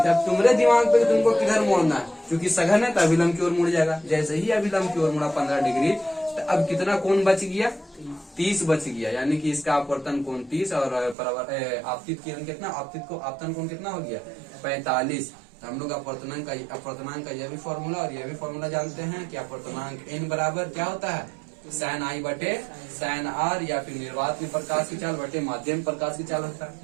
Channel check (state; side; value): drops out; left; at 11.2 s